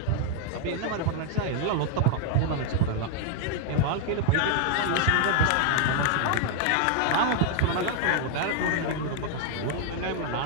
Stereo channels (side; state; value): both; different; correlation 0.00